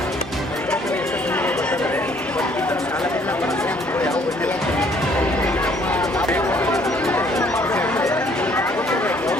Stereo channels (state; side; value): normal; both; correlation 0.62